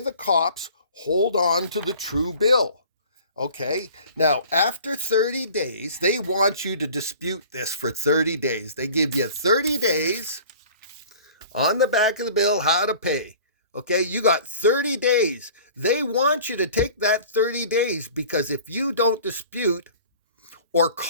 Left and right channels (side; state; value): both; inverted; correlation -0.46